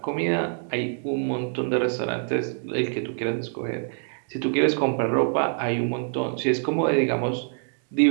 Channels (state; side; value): silent; left; digital silence